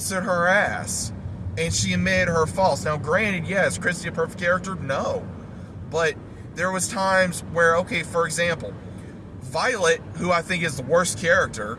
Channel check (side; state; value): both; identical; correlation 1.00